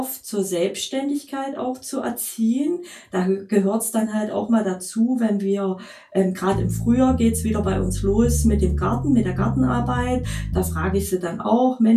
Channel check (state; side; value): identical; both; correlation 1.00